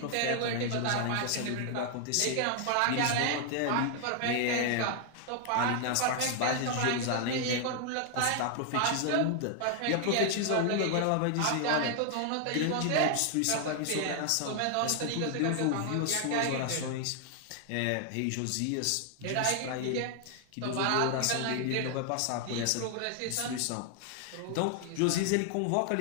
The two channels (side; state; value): both; different; correlation 0.00